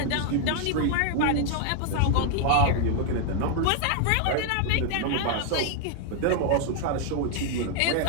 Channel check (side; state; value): both; different; correlation 0.00